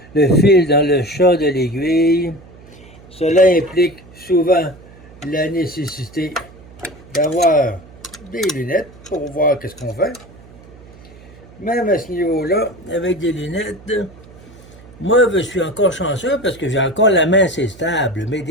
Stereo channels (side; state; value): right; noise; hum, 22 dB below the sound